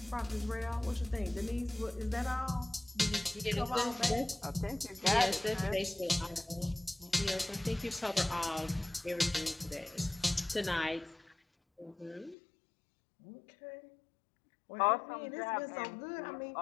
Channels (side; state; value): right; drops out; at 12.4 s